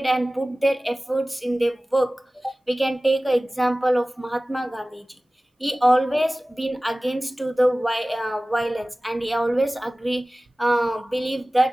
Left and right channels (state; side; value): normal; both; correlation 0.98